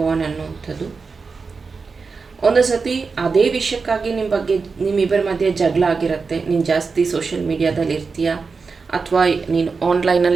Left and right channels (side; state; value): left; quieter; 4.7 dB